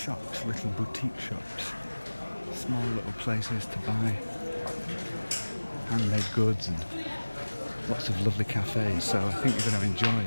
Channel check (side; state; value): both; inverted; correlation -1.00